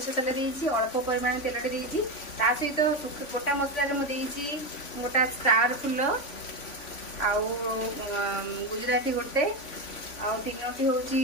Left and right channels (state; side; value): late; right; 3.5 ms